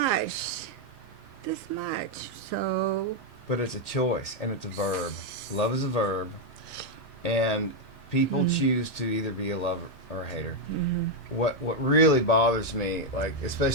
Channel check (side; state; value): both; normal; correlation 0.01